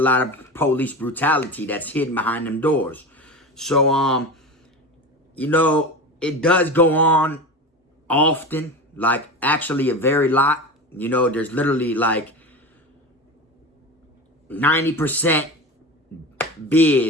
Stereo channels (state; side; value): normal; both; correlation 0.27